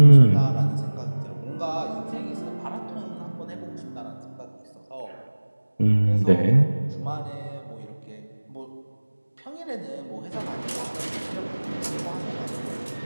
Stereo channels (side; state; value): both; inverted; correlation -1.00